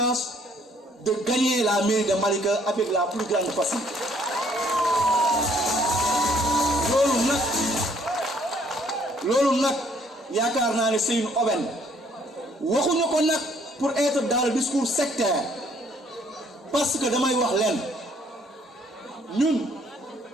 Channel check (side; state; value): both; normal; correlation 0.64